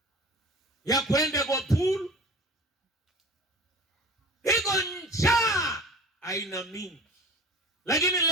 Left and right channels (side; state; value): both; normal; correlation 0.40